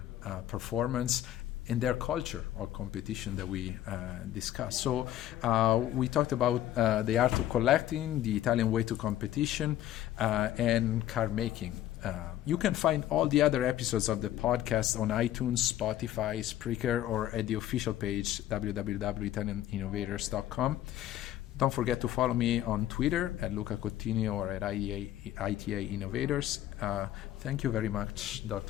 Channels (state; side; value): quieter; right; 12.8 dB